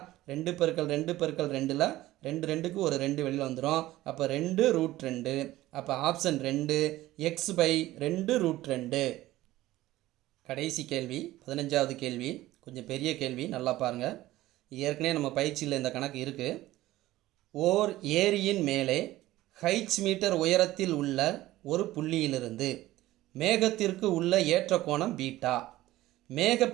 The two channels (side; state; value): left; quieter; 16.2 dB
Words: 2 × 2 × 2ல் 2 2க்கு ஒரு 2 வெளியில் வந்துடும். அப்போ 2 √2. அப்போ ஆப்ஷன் 2 x/2 √2. கடைசி கேள்வி, 15வது கேள்வி. கொஞ்சம் பெரிய கேள்வி, நல்லா பாருங்கள். ஏற்கனவே நம்ம பயிற்சியில் இந்த கணக்கு இருக்குது. ஓர் ஏரியின் மேலே ஹைட்ஸ் மீட்டர் உயரத்தில் உள்ள ஒரு புள்ளியிலிருந்து மேகத்திற்கு உள்ள ஏற்ற கோணம் பீட்டா.